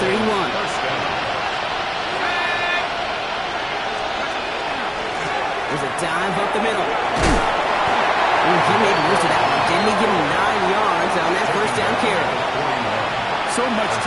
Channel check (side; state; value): both; identical; correlation 1.00